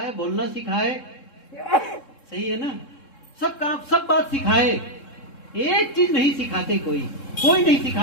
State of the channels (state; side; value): late; right; 3.7 ms